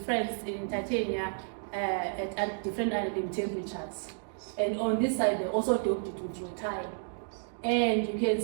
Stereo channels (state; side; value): silent; left; digital silence